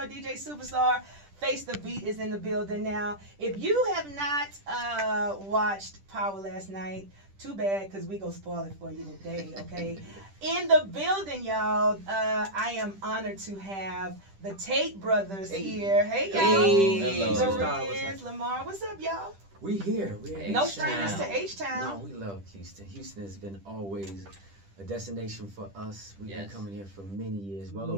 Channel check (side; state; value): left; late; 10 ms